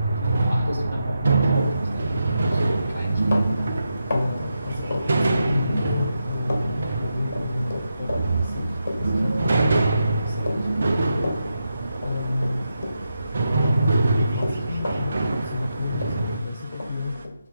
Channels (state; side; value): inverted; both; correlation -0.86